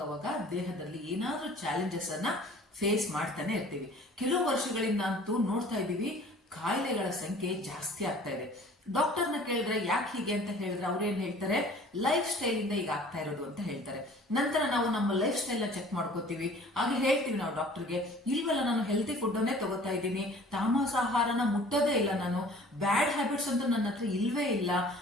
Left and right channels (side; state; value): both; normal; correlation 0.49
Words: ದೇಹದಲ್ಲಿ ಏನಾದ್ರೂ ಚಾಲೆಂಜಸ್ ಅನ್ನ ಫೇಸ್ ಮಾಡ್ತಾನೆ ಇರ್ತೀವಿ. ಕೆಲವು ವರ್ಷಗಳಿಂದ ಅಂತೂ ನೋಡ್ತಾ ಇದ್ದೀವಿ, ಕಾಯಿಲೆಗಳ ಸಂಖ್ಯೆ ಜಾಸ್ತಿ ಆಗ್ತಾ ಇದೆ. ಡಾಕ್ಟರ್ನ ಕೇಳಿದ್ರೆ ಯಾಕೆ ಹೀಗೆ ಅಂತ ಹೇಳಿದ್ರೆ ಅವ್ರೇನ್ ಹೇಳ್ತಾರೆ, ಲೈಫ್ ಸ್ಟೈಲ್ ಇಂದ ಈಗ ಆಗ್ತಾ ಇರೋದು ಅಂತ ಹೇಳ್ತಾರೆ. ನಂತರ ನಾವು ನಮ್ಮ ಲೈಫ್ ಸ್ಟೈಲ್ ನ ಚೆಕ್ ಮಾಡ್ಕೋತೀವಿ. ಹಾಗೆ ಹೇಳ್ತೀವಿ ನಾವು ಡಾಕ್ಟರ್ಗೆ, ಇಲ್ವಲ್ಲ ನಾನು ಹೆಲ್ತಿ ಫುಡ್ ಅನ್ನೇ ತಗೋತಾ ಇದ್ದೀನಿ, ತಾಮಸಾಹಾರನ ಮುಟ್ಟೋದೇ ಇಲ್ಲ, ನಾನು ಬ್ಯಾಡ್ ಹ್ಯಾಬಿಟ್ಸ್ ಅಂತ ನನ್ನ ಹತ್ರ ಇಲ್ವೇ ಇಲ್ಲ,